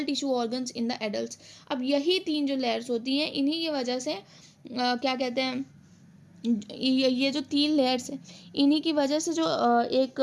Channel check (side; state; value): both; identical; correlation 1.00